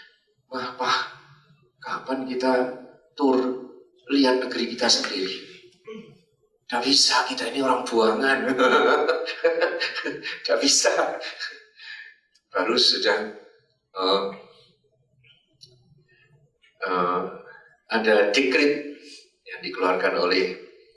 Wah, kapan kita tur lihat negeri kita sendiri? Tidak bisa, kita ini orang buangan. Tidak bisa. Baru sudah ada dekret yang dikeluarkan oleh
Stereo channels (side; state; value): both; identical; correlation 1.00